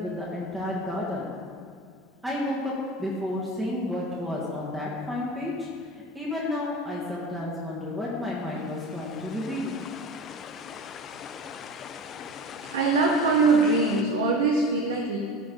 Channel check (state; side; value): normal; both; correlation 0.32